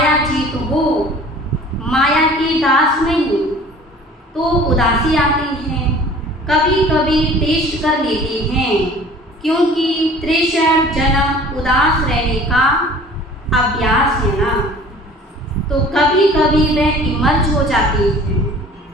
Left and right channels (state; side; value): normal; both; correlation 0.47